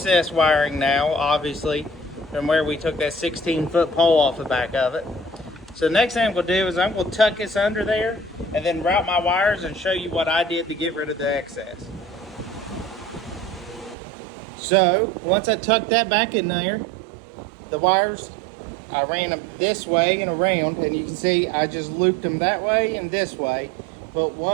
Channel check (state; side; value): drops out; left; at 14.0 s